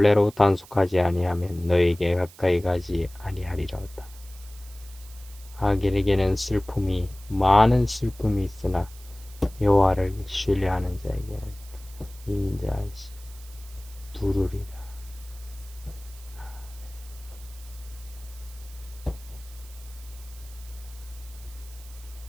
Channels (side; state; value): right; noise; hiss, 21 dB below the sound